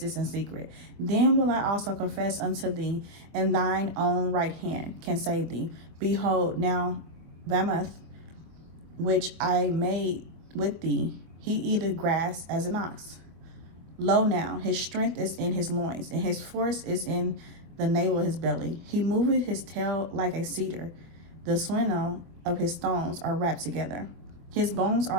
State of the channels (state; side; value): late; left; 24 ms